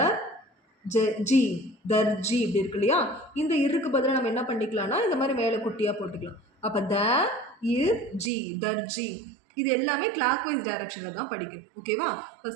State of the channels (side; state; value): left; drops out; at 8.3 s